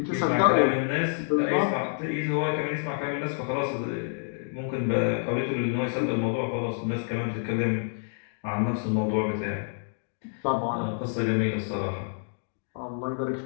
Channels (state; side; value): silent; right; digital silence